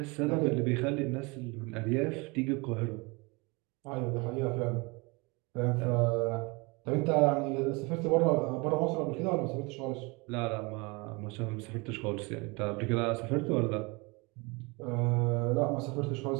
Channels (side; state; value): left; quieter; 27.2 dB